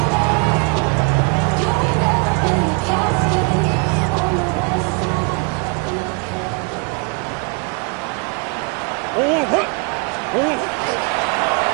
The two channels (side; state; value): left; quieter; 34.6 dB